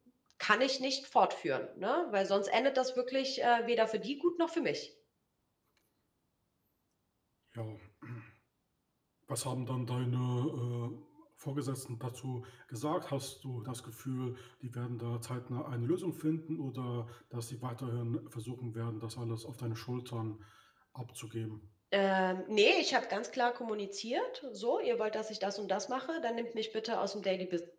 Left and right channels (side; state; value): both; identical; correlation 1.00